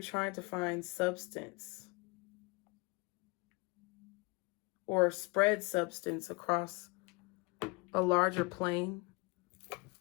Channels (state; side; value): quieter; right; 28.0 dB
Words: trying to find substance or spread substance across a larger plane.